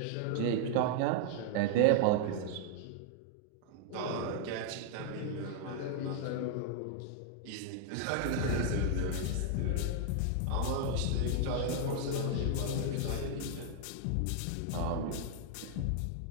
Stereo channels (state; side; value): different; both; correlation 0.00